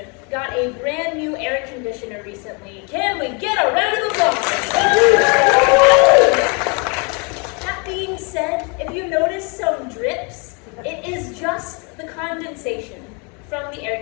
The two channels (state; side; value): quieter; right; 33.3 dB